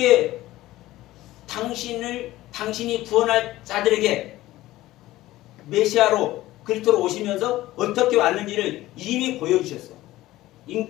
당신이 구원할 자들에게 메시아로 그리스도로 오시면서 어떻게 왔는지를 이미 보여주셨어.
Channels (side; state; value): right; quieter; 16.5 dB